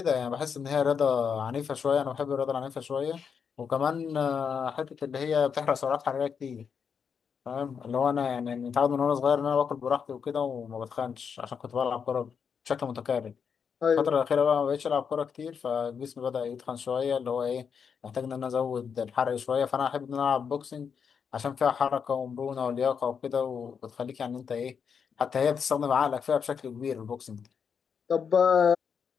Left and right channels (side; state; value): right; quieter; 6.6 dB